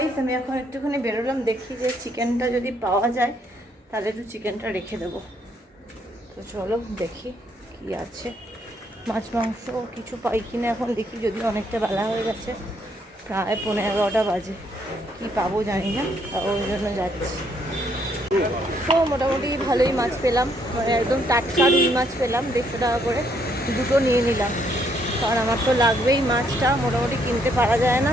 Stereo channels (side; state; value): both; normal; correlation 0.71